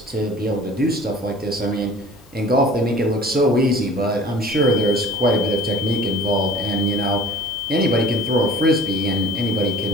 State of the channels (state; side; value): noise; left; hiss, 30 dB below the sound